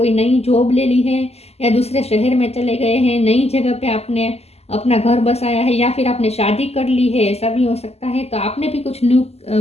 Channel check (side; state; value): right; late; 0.30 ms